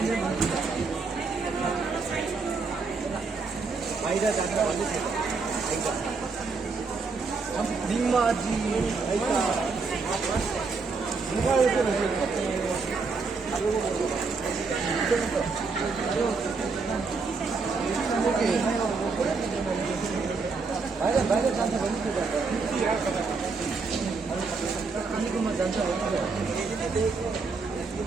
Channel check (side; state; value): left; quieter; 4.4 dB